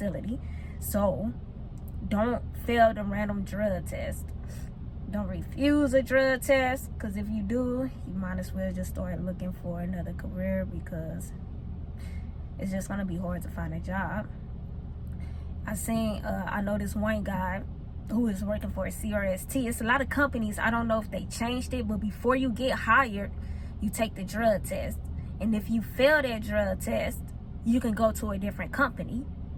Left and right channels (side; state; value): both; identical; correlation 1.00